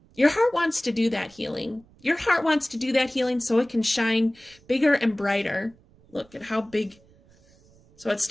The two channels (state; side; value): noise; right; rumble, 29 dB below the sound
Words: Your heart wants to do that healing. Your heart wants to do that healing so it can shine bigger and brighter. Look at how big. So it